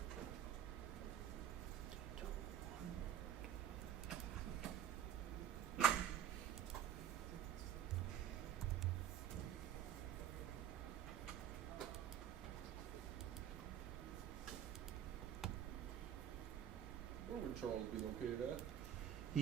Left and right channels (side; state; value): left; quieter; 10.3 dB